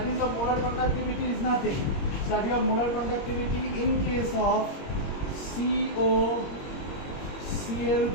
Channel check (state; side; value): late; right; 21 ms